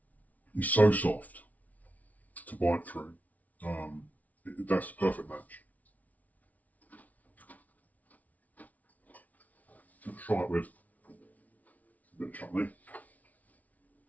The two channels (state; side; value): late; right; 0.072 ms